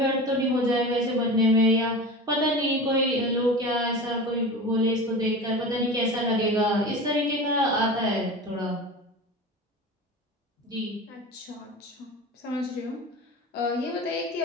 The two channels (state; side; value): normal; both; correlation 0.31